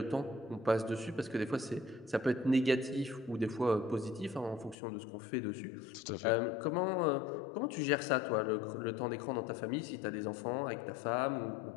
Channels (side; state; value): right; drops out; at 4.8 s